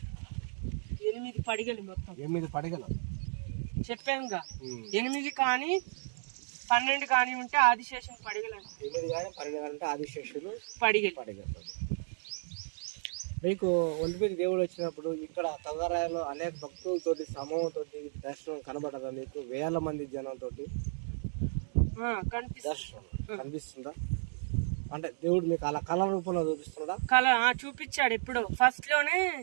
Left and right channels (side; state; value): left; silent; digital silence